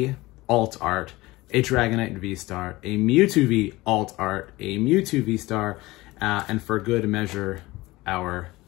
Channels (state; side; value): quieter; right; 19.8 dB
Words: alt art, a Dragonite V Star, a Mewtwo V alt art, a Mewtwo V Star, and for good measure, our